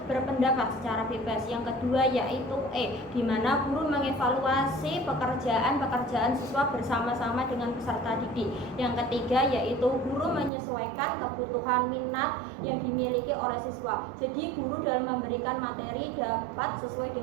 berpendapat secara bebas. Yang kedua yaitu E, di mana guru mengevaluasi pekerjaan siswa bersama-sama dengan peserta didik. Yang ketiga yaitu guru menyesuaikan kebutuhan minat yang dimiliki oleh siswa. Jadi guru dalam memberikan materi dapat sesuai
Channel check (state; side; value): drops out; left; at 10.5 s